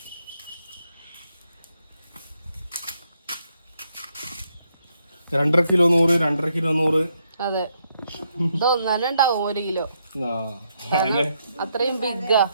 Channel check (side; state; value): both; inverted; correlation -0.77